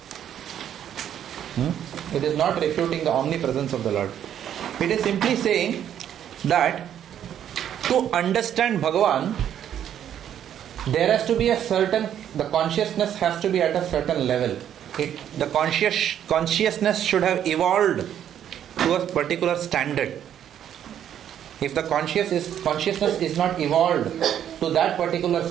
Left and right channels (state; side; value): quieter; left; 10.0 dB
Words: It is not refuting the omnipresence of the Lord. It is simply saying that to understand Bhagavan, there has to be the consciousness has to be at a certain level. The consciousness should have evolved to a particular standard. If the consciousness is not evolved to that particular